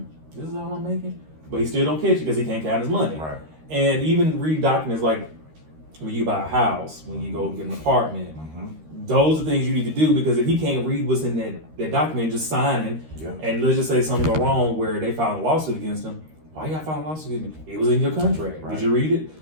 this is all I'm making? But he still don't catch it because he can't count his money. Right. And even read documents like when you buy a house, when you go get an apartment, Mm-hmm. those are things you need to do because if he can't read what's in that document, just signing, Yeah. and let's just say something go wrong where they filed a lawsuit against him, why you gotta file a lawsuit against me? It was in your contract. Right. Did you read it?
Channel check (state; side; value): late; left; 13 ms